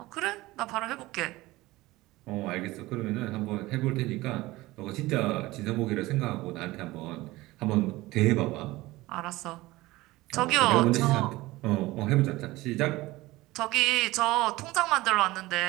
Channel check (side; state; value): left; quieter; 19.2 dB